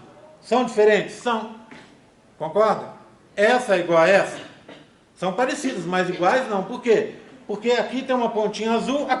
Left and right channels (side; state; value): both; identical; correlation 1.00